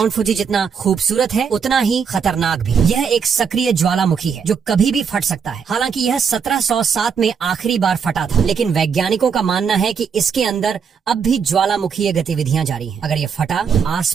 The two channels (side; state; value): left; quieter; 6.5 dB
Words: फुजी जितना खूबसूरत है उतना ही खतरनाक भी। यह एक सक्रिय ज्वालामुखी है जो कभी भी फट सकता है। हालांकि यह 1707 में आखिरी बार फटा था, लेकिन वैज्ञानिकों का मानना है कि इसके अंदर अब भी ज्वालामुखीय गतिविधियां जारी हैं। अगर ये फटा